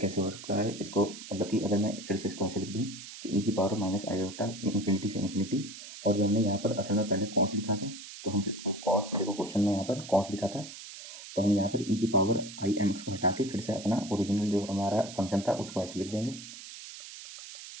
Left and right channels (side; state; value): right; noise; hiss, 13 dB below the sound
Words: हो सकता है, इसको मतलब कि अगर मैं फिर से इसको ऐसे लिख दूँ कि ई की पावर माइनस आयोटा इन्फिनिटी से इन्फिनिटी, और जो हमने यहाँ पर असल में पहले कॉस लिखा था, तो हम फिर इसको कॉस, देखो क्वेश्चन में यहाँ पर कॉस लिखा था, तो हम यहाँ पर ई की पावर आई एम एक्स को हटा के फिर से अपना ओरिजिनल जो हमारा फंक्शन था उसको ऐसे लिख देंगे।